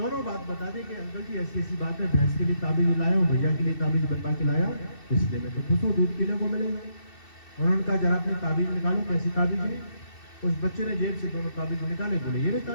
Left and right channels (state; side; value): late; right; 2.7 ms